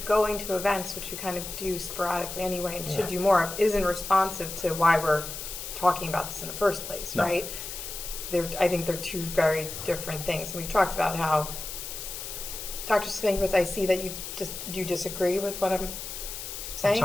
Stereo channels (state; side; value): noise; left; hiss, 8 dB below the sound